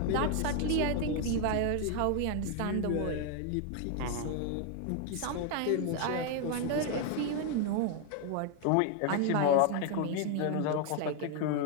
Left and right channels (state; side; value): different; both; correlation 0.01